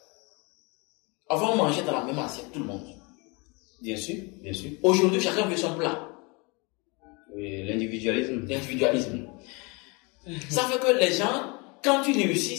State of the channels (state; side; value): quieter; right; 29.1 dB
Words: Avant, on mangeait dans la même assiette, tout le monde. Bien sûr, bien sûr. Aujourd'hui, chacun veut son plat. Oui, l'individualisme. L'individualisme. Ça fait que les gens, quand tu réussis,